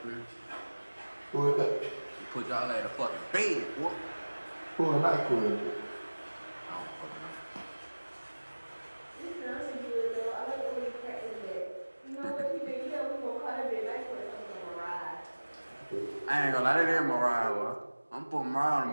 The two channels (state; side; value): inverted; both; correlation -1.00